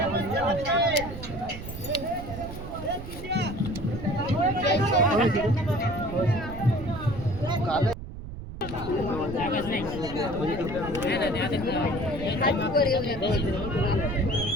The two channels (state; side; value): noise; right; rumble, 10 dB below the sound